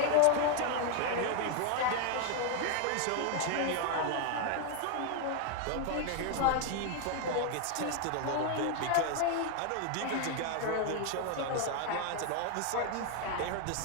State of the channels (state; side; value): different; both; correlation 0.01